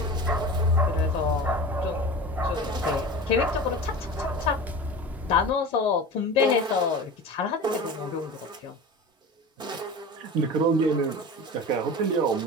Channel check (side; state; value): both; normal; correlation 0.33